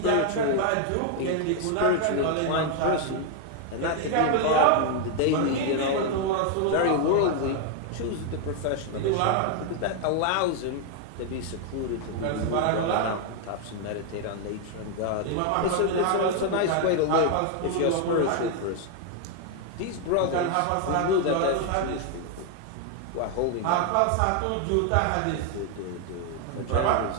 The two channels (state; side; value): different; both; correlation 0.00